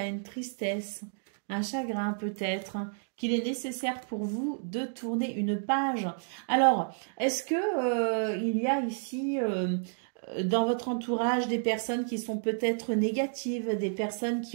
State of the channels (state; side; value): silent; left; digital silence